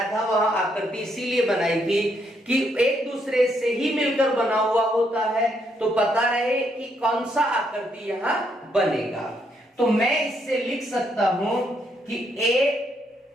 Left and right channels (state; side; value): normal; both; correlation 0.75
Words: था वहां आकृति इसीलिए बनाई थी कि एक दूसरे से ही मिलकर बना हुआ होता है, तो पता रहे कि कौन सा आकृति यहां बनेगा। तो मैं इससे लिख सकता हूं कि